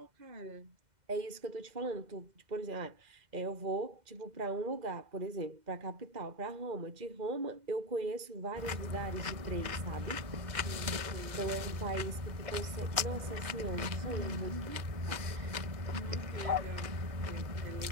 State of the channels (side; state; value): left; late; 2.0 ms